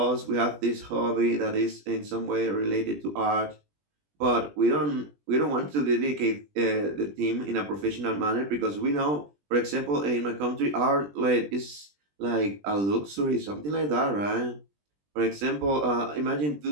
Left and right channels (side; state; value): left; late; 20 ms